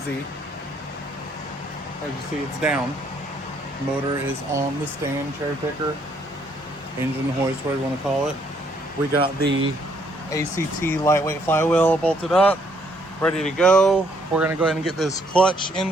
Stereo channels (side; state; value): both; normal; correlation 0.68